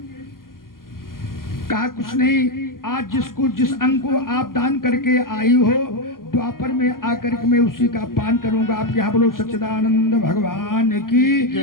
कहा कुछ नहीं, आज जिसको जिस अंग को आप दान करके आई हो, द्वापर में आकर के मैं उसी का पान करूंगा। आप यहाँ बोलो सच्चिदानंद भगवान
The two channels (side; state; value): right; late; 0.91 ms